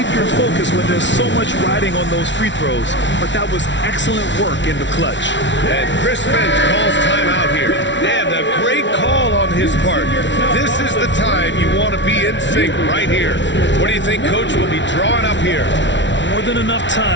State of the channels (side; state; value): right; late; 0.53 ms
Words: your focus when there's so much riding on those free throws, but that was excellent work in the clutch. And Chris Finch calls timeout here. And a great call on his part. This is the time you want to be in sync right here. What do you think Coach will be drawing up here? More than enough